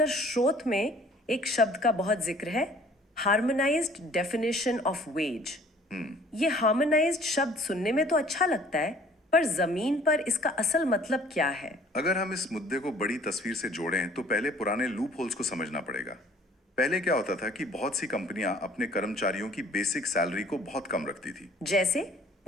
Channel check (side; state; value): both; normal; correlation 0.54